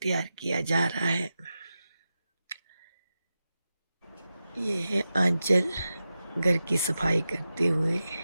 तैयार किया जा रहा है। ये है आंचल घर की सफाई करते हुए।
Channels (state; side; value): inverted; both; correlation -0.92